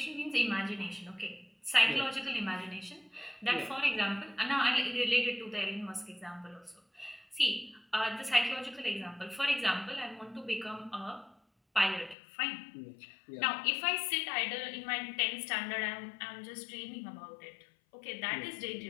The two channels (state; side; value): drops out; right; at 12.2 s